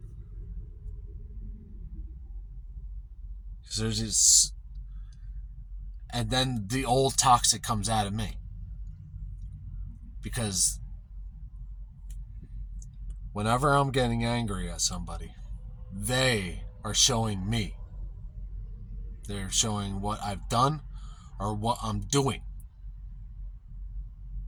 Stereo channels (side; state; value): both; identical; correlation 1.00